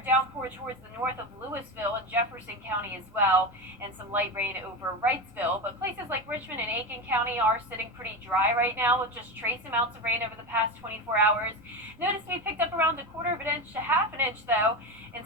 downpour towards the north of Louisville and Jefferson County as well, and some light rain over Wrightsville. But places like Richmond and Aiken County are sitting pretty dry right now with just trace amounts of rain over the past 24 hours. Notice we picked up around a quarter of an inch to half an inch, though, in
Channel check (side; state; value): right; noise; rumble, 27 dB below the sound